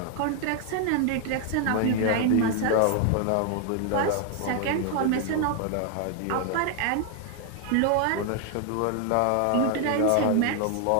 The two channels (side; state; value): both; different; correlation 0.00